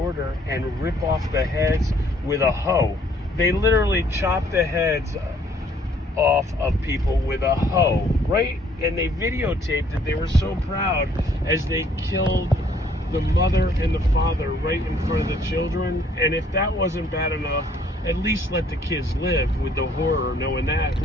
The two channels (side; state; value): both; normal; correlation 0.62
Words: and rip off the heads with a hoe. They literally chopped the heads off of people with a hoe, right? And they videotaped it. They were so proud as they killed the mother and the father right in front of the children. And if that wasn't bad enough, at least let the kids live with the horror, knowing that.